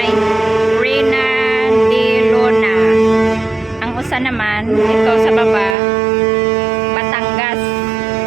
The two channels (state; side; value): drops out; left; at 5.8 s